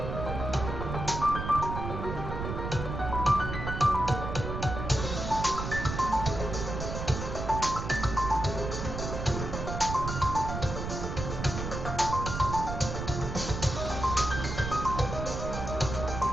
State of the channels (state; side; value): noise; right; rumble, 5 dB below the sound